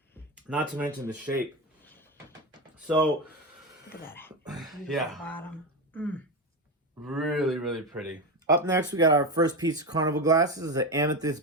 Not to mention the shape. So, look at that. Yeah. Bottom. Really, really pretty. Up next, we got our first piece of Carnival Glass. This is an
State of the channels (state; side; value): normal; both; correlation 0.16